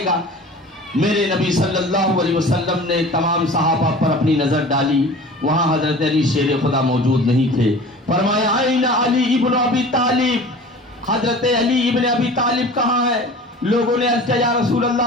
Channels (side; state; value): both; normal; correlation 0.40